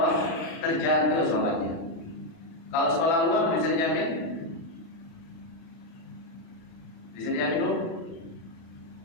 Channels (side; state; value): right; late; 37 ms